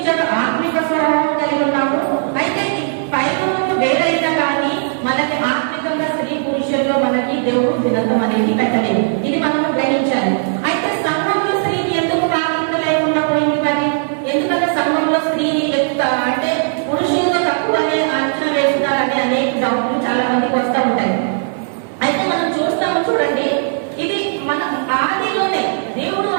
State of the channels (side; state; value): left; silent; 56 dB below the other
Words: ఆత్మిక స్వభావం కలిగి ఉన్నాము. అయితే పైన వేరైనా కానీ మనకి ఆత్మికంగా స్త్రీ పురుషుల్లో మనకి దేవుడు భిన్నత్వం అనేది పెట్టలేదు. ఇది మనము గ్రహించాలి. అయితే సంఘంలో స్త్రీకి ఎందుకు ప్రాధాన్యత లేకుండా పోయింది మరి? ఎందుకంటే సంఘంలో స్త్రీని అంటే పురుషులతో తక్కువ అనే అంచనా వేస్తున్నారని అనేక డౌట్లు చాలా మందికి వస్తూ ఉంటాయి. అయితే మనం చూస్తాము, చూడండి, ఇది మన ఆదిలోనే దేవుడు